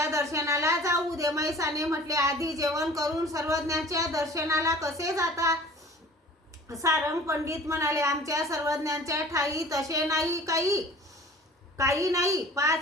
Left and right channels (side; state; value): both; normal; correlation 0.46